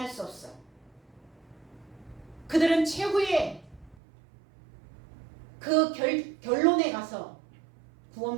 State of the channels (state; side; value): drops out; left; at 4.0 s